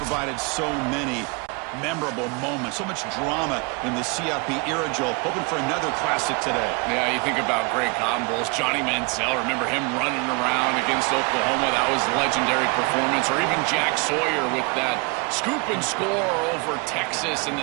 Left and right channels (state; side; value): quieter; left; 31.0 dB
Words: so many memorable moments, so much drama in the CFP era, Joel. Hoping for another classic today. Yeah, you think about great Cotton Bowls. Johnny Manziel, remember him running around against Oklahoma? That was a legendary performance. Or even Jack Sawyer with that scoop and score over Texas in